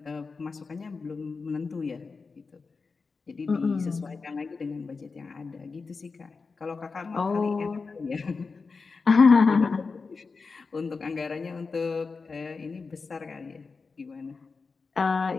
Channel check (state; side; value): quieter; right; 4.5 dB